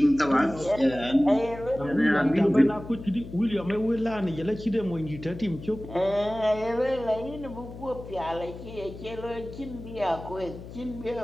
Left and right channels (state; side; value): noise; left; hum, 13 dB below the sound